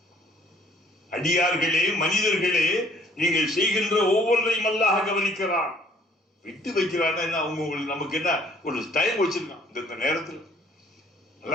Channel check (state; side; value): normal; both; correlation 0.59